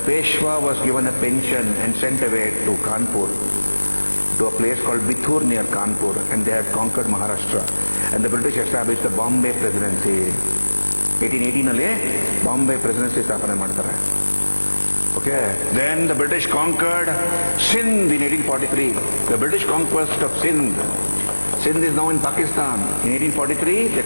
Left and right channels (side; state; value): both; inverted; correlation -1.00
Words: Peshwa was given a pension and sent away to Kanpur, to a place called Bithur near Kanpur, and they had conquered Maharashtra. and the British established the Bombay Presidency. 1818 Bombay Presidency ಸ್ಥಾಪನೆ ಮಾಡ್ತಾರೆ. Okay, then the British conquered Sindh in 1843. The British conquest of Sindh. Sindh is now in Pakistan. In 1843, they